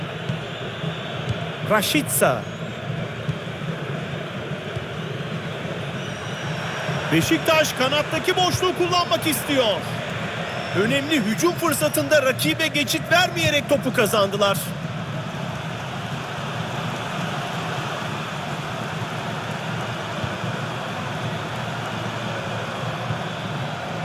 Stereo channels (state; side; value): identical; both; correlation 1.00